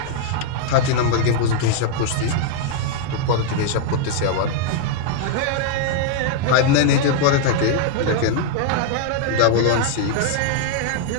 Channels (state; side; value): different; both; correlation 0.00